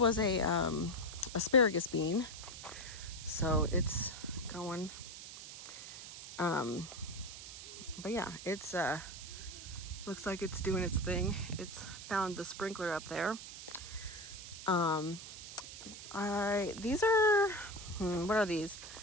a asparagus bean, so it's going. But yeah, it's looks like it's doing its thing. It's found the sprinkler up there. These are, what are these?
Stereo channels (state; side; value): noise; right; hiss, 12 dB below the sound